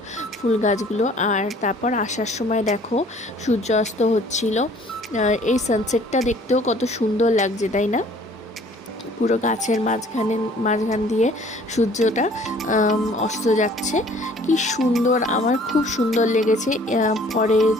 ফুল গাছগুলো। আর তারপর আসার সময় দেখো সূর্যাস্ত হচ্ছিল। এই সানসেটটা দেখতেও কত সুন্দর লাগছে, তাই না? পুরো গাছের মাঝখান দিয়ে সূর্যটা অস্ত যাচ্ছে, কি সুন্দর, আমার খুব সুন্দর লেগেছে। পরে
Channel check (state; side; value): normal; both; correlation 0.55